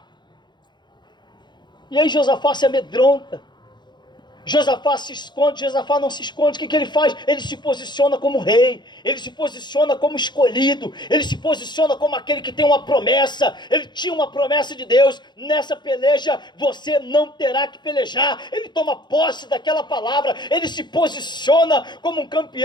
E aí Josafá se amedronta. Josafá se esconde. Josafá não se esconde. O que ele faz? Ele se posiciona como rei, ele se posiciona como escolhido, ele se posiciona como aquele que tem uma promessa. Ele tinha uma promessa de Deus: nessa peleja você não terá que pelejar. Ele toma posse daquela palavra, ele se posiciona como um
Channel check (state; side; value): late; right; 0.21 ms